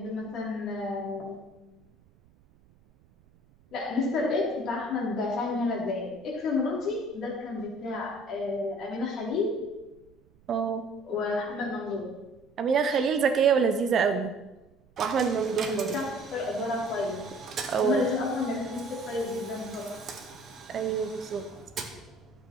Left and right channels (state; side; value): noise; right; rumble, 30 dB below the sound